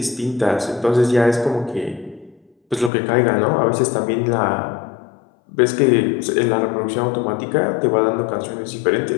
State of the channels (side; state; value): right; drops out; at 2.9 s